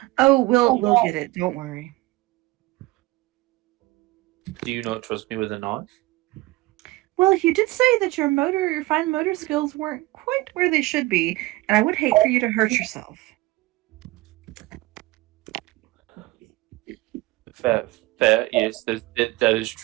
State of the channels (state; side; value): quieter; left; 20.2 dB